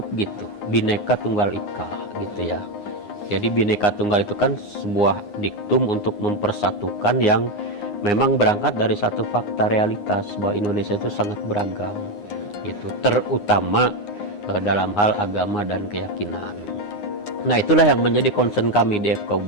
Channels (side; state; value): right; late; 9.7 ms